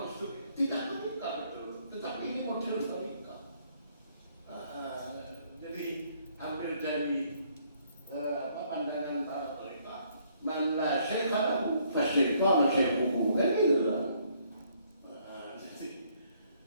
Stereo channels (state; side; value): inverted; both; correlation -0.67